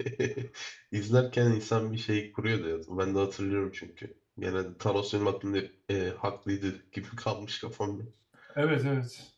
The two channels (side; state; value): both; identical; correlation 1.00